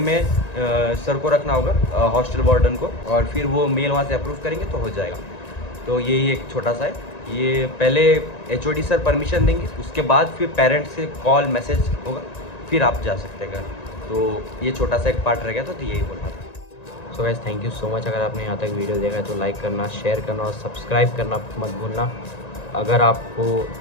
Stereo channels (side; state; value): right; late; 1.9 ms